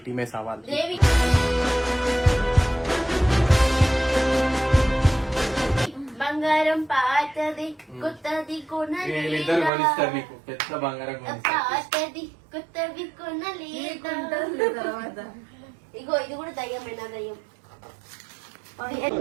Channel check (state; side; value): drops out; left; at 9.7 s